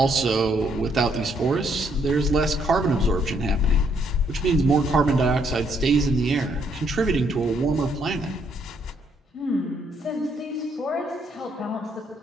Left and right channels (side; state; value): both; normal; correlation 0.71